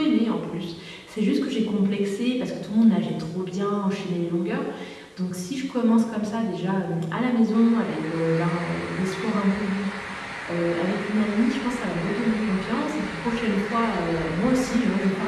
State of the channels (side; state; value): both; identical; correlation 1.00